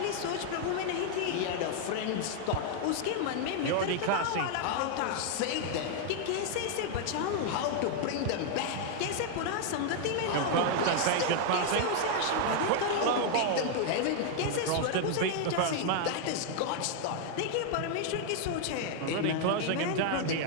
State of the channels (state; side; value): different; both; correlation 0.00